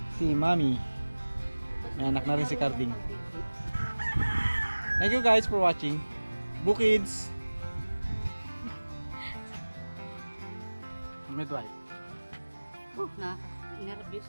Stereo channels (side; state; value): both; inverted; correlation -1.00